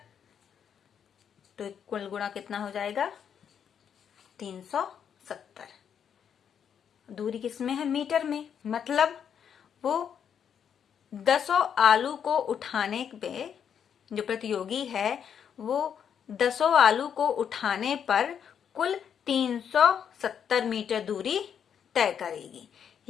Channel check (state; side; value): quieter; right; 8.1 dB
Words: तो कुल गुणा कितना हो जाएगा? 370। दूरी किसमें है? मीटर में। मतलब वो 10 आलू को उठाने पे, जो प्रतियोगी है वो 10 आलू को उठाने पर कुल 370 मीटर दूरी तय करेगी।